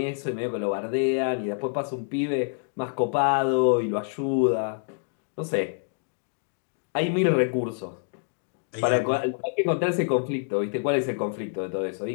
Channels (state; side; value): silent; right; digital silence